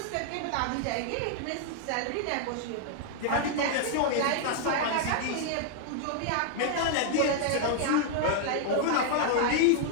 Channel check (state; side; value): different; both; correlation 0.00